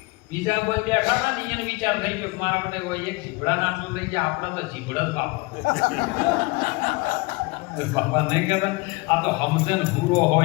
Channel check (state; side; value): quieter; right; 25.1 dB